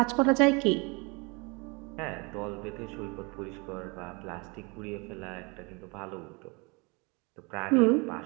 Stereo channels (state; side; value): quieter; left; 29.2 dB